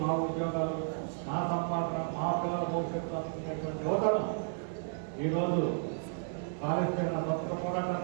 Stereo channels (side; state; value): left; silent; digital silence